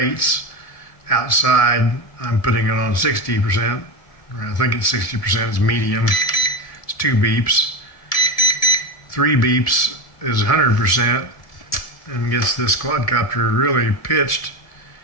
Outside, I'm putting it on 60%, or I think it's 60%, it's medium. It's 2 beeps. 3 beeps is 100% and gets this quadcopter really pitched,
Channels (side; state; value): right; late; 1.7 ms